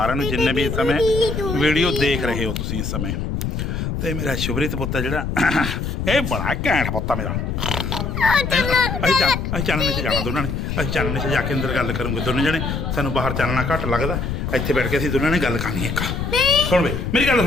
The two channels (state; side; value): noise; left; rumble, 3 dB below the sound